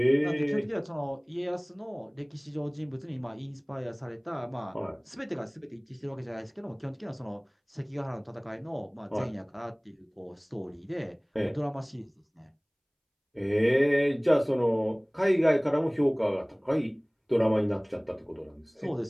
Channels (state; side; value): identical; both; correlation 1.00